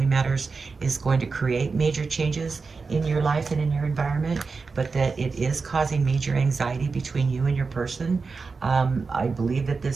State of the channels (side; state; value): left; quieter; 4.6 dB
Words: matters is going to create major changes in your life and in your environment, but that it is causing major anxiety between you and your person. I believe that